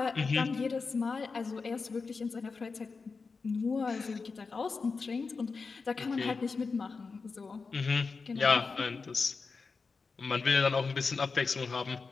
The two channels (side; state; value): right; quieter; 4.6 dB